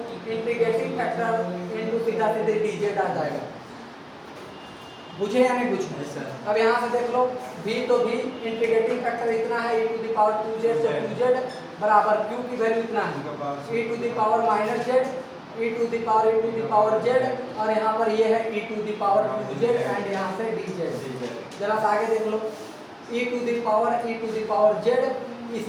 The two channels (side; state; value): both; identical; correlation 1.00